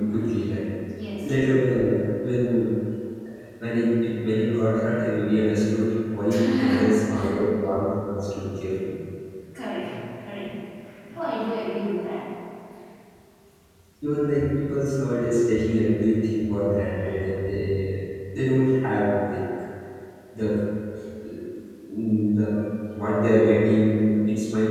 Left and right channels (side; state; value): both; identical; correlation 1.00